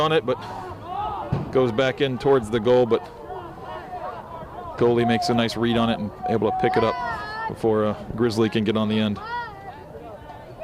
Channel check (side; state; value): both; identical; correlation 1.00